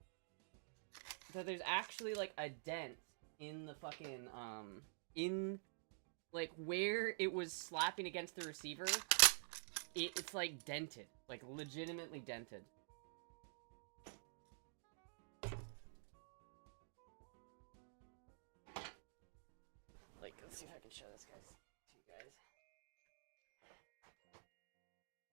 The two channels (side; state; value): left; silent; digital silence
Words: That there's actually like a dent in the fucking, in like where it was slapping against the receiver. It's like dented. Like legitimately dented. Let's see if I can show this to you guys.